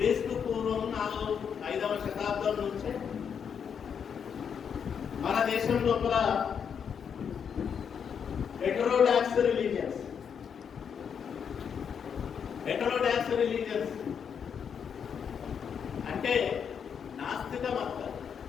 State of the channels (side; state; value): right; quieter; 7.3 dB